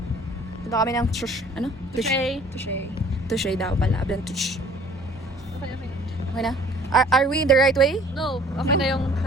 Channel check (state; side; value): normal; both; correlation 0.53